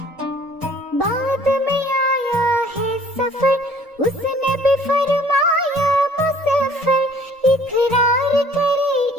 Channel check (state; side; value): normal; both; correlation 0.55